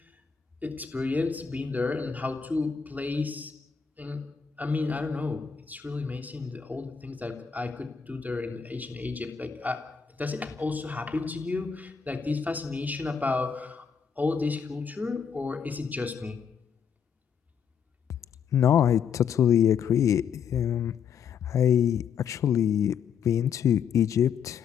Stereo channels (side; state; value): right; quieter; 6.9 dB